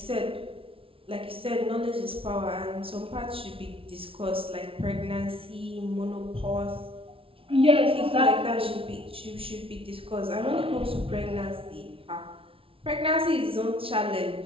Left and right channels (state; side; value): late; left; 0.26 ms